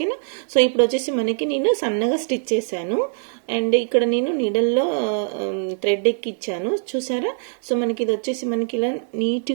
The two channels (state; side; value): silent; left; 64 dB below the other